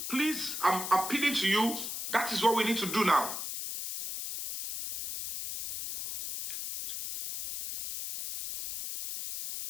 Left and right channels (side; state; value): left; noise; hiss, 6 dB below the sound